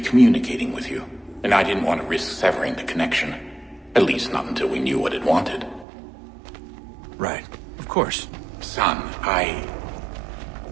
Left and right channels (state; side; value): drops out; left; at 5.9 s